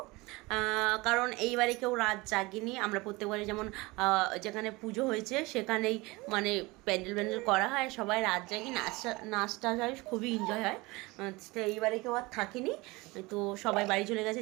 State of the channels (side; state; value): left; quieter; 23.1 dB